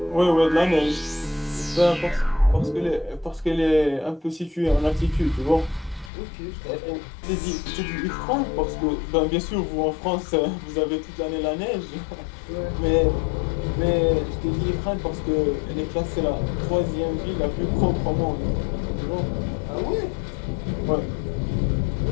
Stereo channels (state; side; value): drops out; right; at 6.1 s